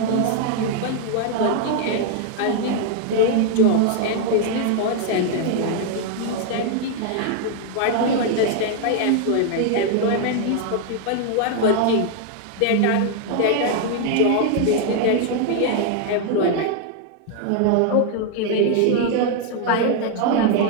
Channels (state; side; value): different; both; correlation 0.00